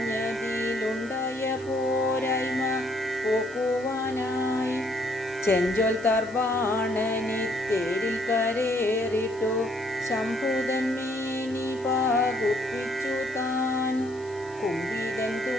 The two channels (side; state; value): left; noise; hiss, 24 dB below the sound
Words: പോരായ്മ പോക്കുവാനായി ചെഞ്ചൊൽ തർബാണനി തേരിൽ കരേറിട്ടു ശംഭുതന്മേനി പാകുപ്പിച്ചു താൻ. കുമ്പിതൻ